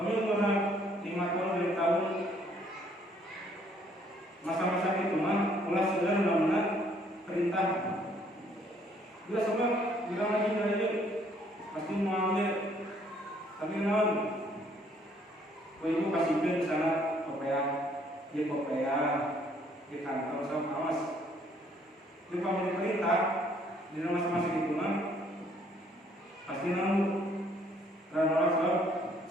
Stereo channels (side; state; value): both; normal; correlation 0.64